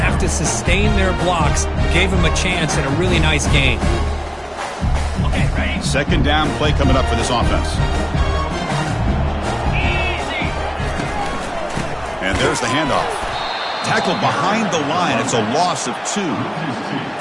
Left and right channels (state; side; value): identical; both; correlation 1.00